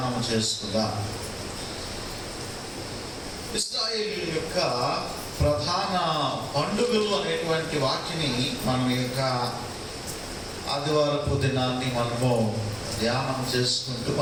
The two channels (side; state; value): both; identical; correlation 1.00